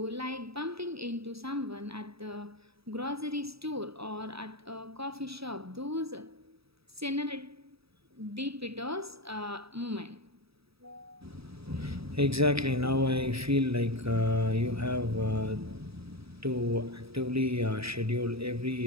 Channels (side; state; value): left; late; 0.77 ms